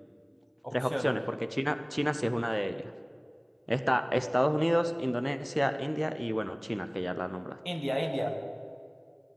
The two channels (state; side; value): identical; both; correlation 1.00